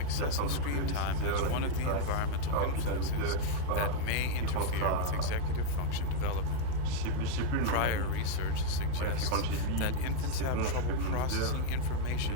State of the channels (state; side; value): different; both; correlation 0.00